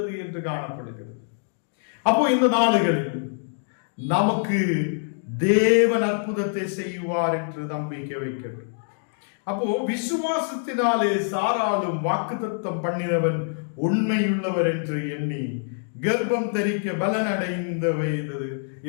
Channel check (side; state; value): right; silent; digital silence